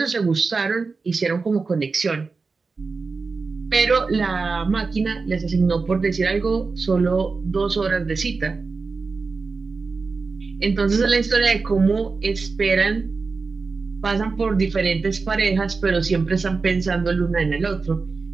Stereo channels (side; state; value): left; quieter; 4.3 dB